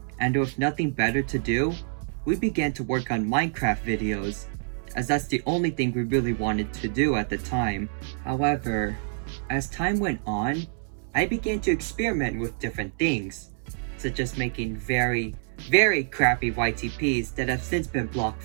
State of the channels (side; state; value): left; silent; 60 dB below the other